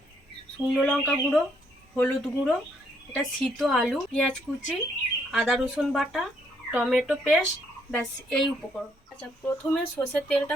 শুকনো লঙ্কা গুঁড়ো, হলুদ গুঁড়ো, এটা সিদ্ধ আলু, পেঁয়াজ কুচি, আদা রসুন বাটা, টমেটো পেস্ট, ব্যাস এই উপকরণ। আচ্ছা, প্রথমে সর্ষের তেলটা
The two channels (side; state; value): both; normal; correlation 0.71